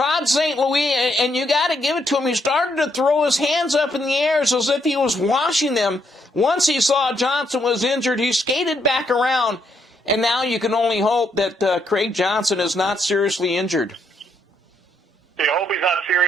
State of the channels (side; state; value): both; normal; correlation 0.75